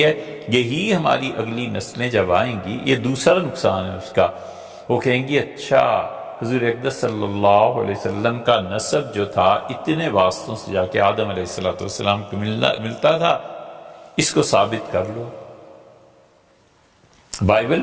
ہے؟ یہی ہماری اگلی نسلیں جب آئیں گی، یہ دوسرا نقصان ہے اس کا، وہ کہیں گی اچھا حضور اقدس صلی اللہ علیہ وسلم کا نسب جو تھا اتنے واسطوں سے جا کے آدم علیہ السلام کو ملتا تھا، اس کو ثابت کر لو۔ بائبل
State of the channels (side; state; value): both; identical; correlation 1.00